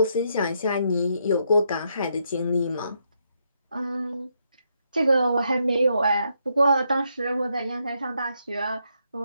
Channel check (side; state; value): both; inverted; correlation -0.78